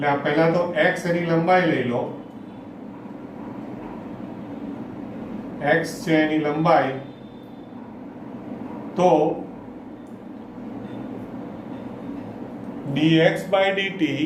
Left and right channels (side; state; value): both; identical; correlation 1.00